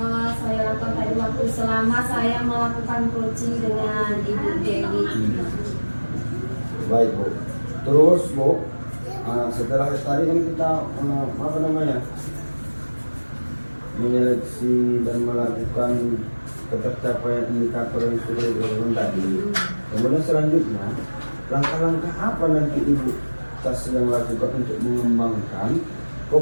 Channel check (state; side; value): inverted; both; correlation -1.00